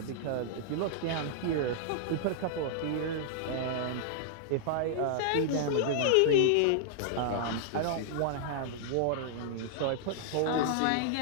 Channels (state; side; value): different; both; correlation -0.01